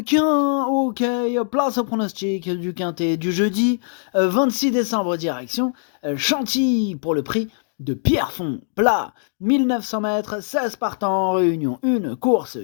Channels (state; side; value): silent; right; digital silence